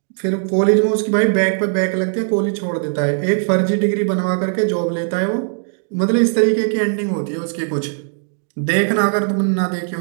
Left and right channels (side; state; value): left; silent; digital silence